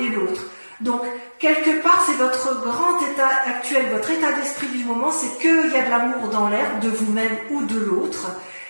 l'autre. Donc, quelque part, c'est votre grand état actuel, votre état d'esprit du moment, c'est qu'il y a de l'amour dans l'air, de vous-même ou de l'autre,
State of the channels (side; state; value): both; inverted; correlation -1.00